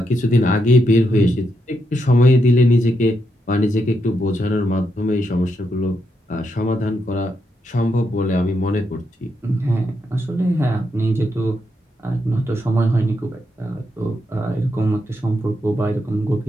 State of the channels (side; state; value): both; normal; correlation 0.81